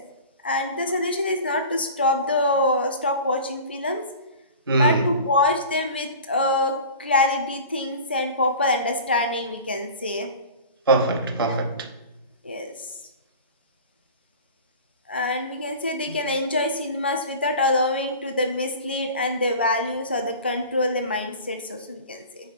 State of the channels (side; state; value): both; inverted; correlation -0.38